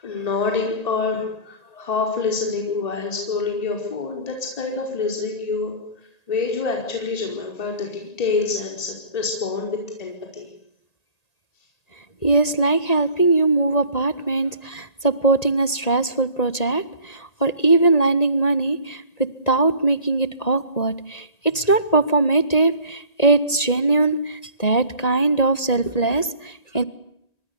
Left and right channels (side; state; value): right; late; 1.8 ms